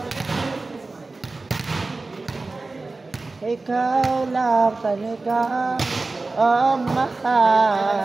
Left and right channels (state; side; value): quieter; left; 3.5 dB